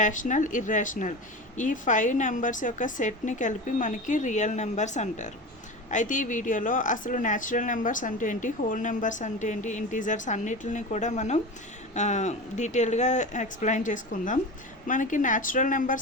irrational ఈ 5 నెంబర్స్ యొక్క సెట్ని కలిపి మనకి రియల్ నెంబర్స్ అంటారు. అయితే ఈ వీడియోలో అసలు న్యాచురల్ నెంబర్స్ అంటే ఏంటి, హోల్ నెంబర్స్ అంటే ఏంటి, ఇంటీజర్స్ అన్నిటిని కూడా మనం డీటెయిల్గా ఎక్స్ప్లెయిన్ చేసుకుందాం. మనకి న్యాచురల్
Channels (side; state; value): both; normal; correlation 0.28